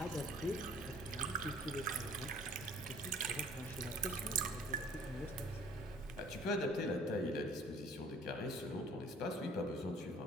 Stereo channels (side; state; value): both; normal; correlation 0.54